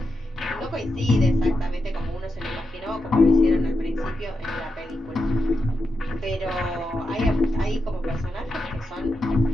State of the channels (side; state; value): both; normal; correlation 0.86